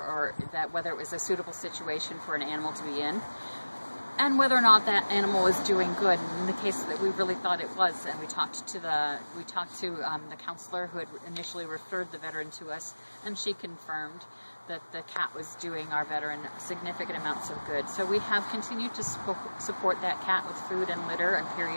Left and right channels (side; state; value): both; inverted; correlation -1.00